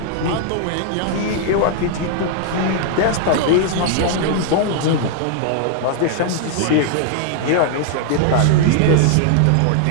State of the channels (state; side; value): different; both; correlation 0.00